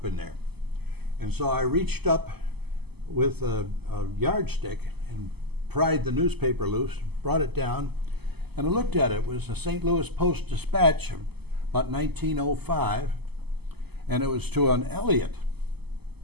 in there. And so I reached up with a yardstick and pried the newspaper loose, brought it down, and I looked at it. It was a St. Louis Post-Dispatch, about 1905, and it was to an Elliott.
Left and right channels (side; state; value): left; late; 0.97 ms